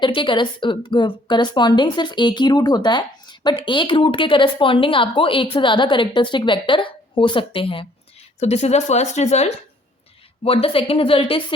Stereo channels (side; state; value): both; normal; correlation 0.61